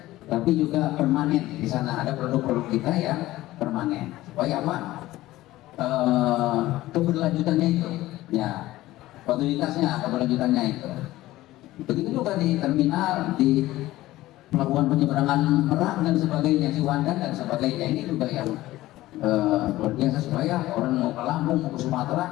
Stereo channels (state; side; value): quieter; right; 16.6 dB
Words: tapi juga permanen. Di sana ada produk-produk kita yang permanen. Supaya apa? Keberlanjutannya itu, ya, kualitasnya, keberlanjutannya itu. Begitu juga di terminal, di pelabuhan penyeberangan Merak dan sebagainya, Ciwandan dan sebagainya. Ini juga yang luar biasa supaya orang mau ke Lampung, mau ke